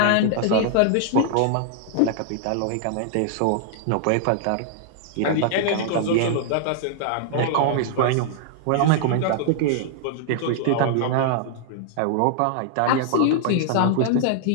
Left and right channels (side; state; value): both; different; correlation -0.01